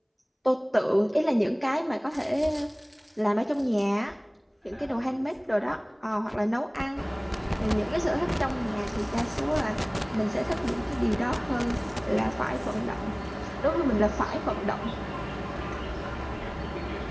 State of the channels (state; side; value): identical; both; correlation 1.00